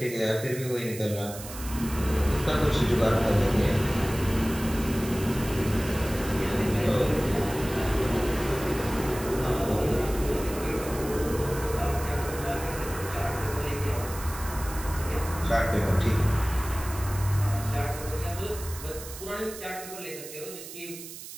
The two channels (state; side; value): noise; right; hiss, 12 dB below the sound